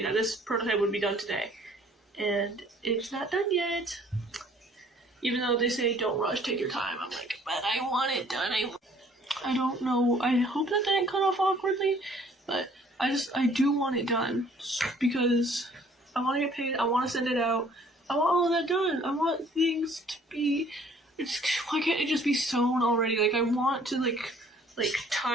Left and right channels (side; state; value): both; normal; correlation 0.57